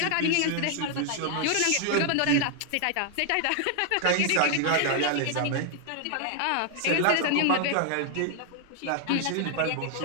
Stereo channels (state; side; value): different; both; correlation 0.00